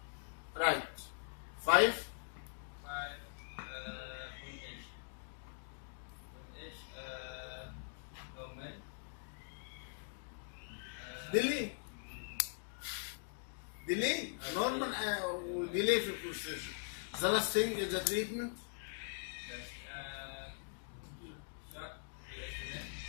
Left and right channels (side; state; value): right; silent; digital silence